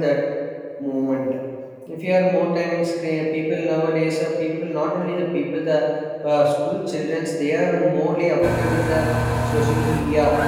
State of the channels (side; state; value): both; identical; correlation 1.00